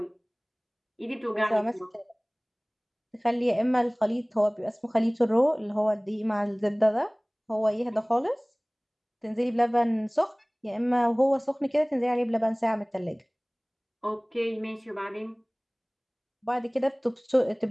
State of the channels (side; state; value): both; identical; correlation 1.00